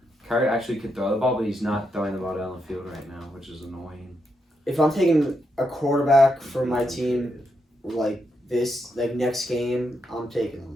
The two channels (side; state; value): both; normal; correlation 0.82